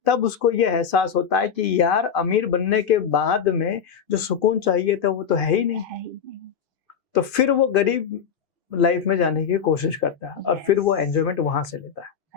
तब उसको ये एहसास होता है कि यार अमीर बनने के बाद में जो सुकून चाहिए था वो तो है ही नहीं, है ही नहीं। तो फिर वो गरीब लाइफ में जाने की कोशिश करता है और फिर वो एंजॉयमेंट वहां से लेता है।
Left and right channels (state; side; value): quieter; right; 7.3 dB